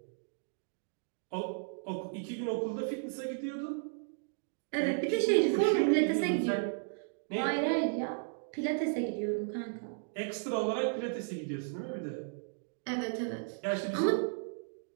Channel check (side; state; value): left; silent; digital silence